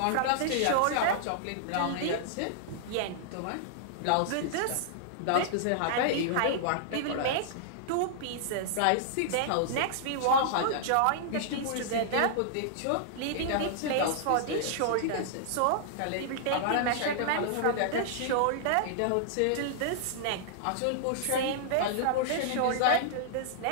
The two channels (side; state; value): both; different; correlation -0.01